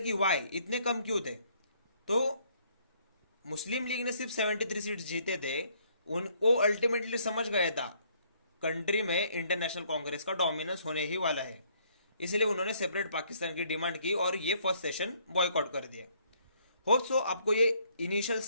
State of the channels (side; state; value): both; inverted; correlation -0.66